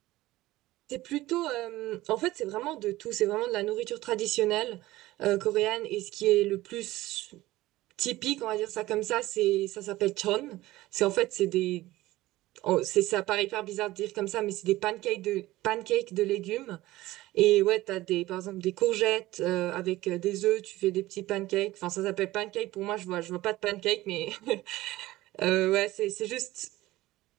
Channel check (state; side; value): quieter; left; 17.3 dB